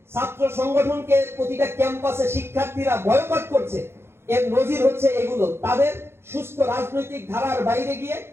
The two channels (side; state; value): left; late; 0.12 ms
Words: সংগঠনকে প্রতিটা ক্যাম্পাসে শিক্ষার্থীরা বয়কট করছে, এর নজির হচ্ছে এগুলো। তাদের সুস্থ রাজনৈতিক ধারার বাইরে গিয়ে